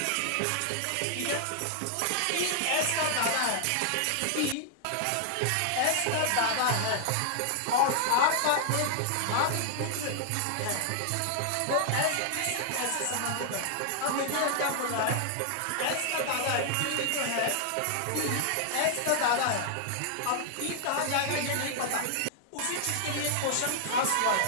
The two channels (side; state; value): both; different; correlation 0.00